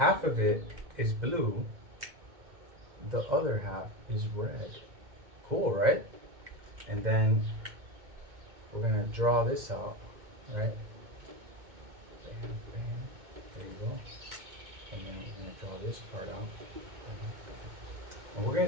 of it is blue, the other half is red. Cool, right? And then we're gonna draw this out, right? Bam, bam. There you go. And then we're gonna draw this part out. And we're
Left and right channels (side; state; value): left; late; 2.2 ms